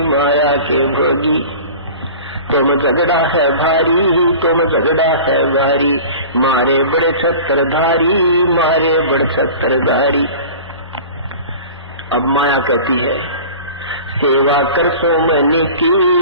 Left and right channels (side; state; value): both; inverted; correlation -0.39